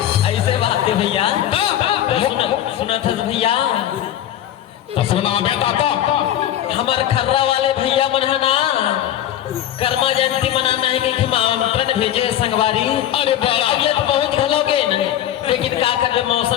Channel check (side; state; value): right; quieter; 11.6 dB